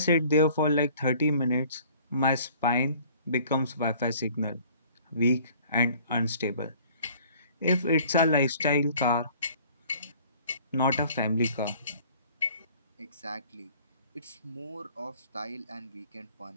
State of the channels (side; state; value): both; inverted; correlation -0.53